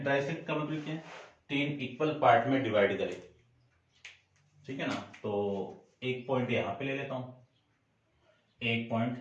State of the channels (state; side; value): identical; both; correlation 1.00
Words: का मतलब क्या है, 3 इक्वल पार्ट में डिवाइड करे, ठीक है ना। तो एक पॉइंट यहां पे ले लेता हूं, एक